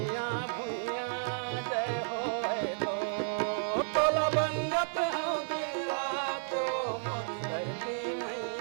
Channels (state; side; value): silent; left; 56 dB below the other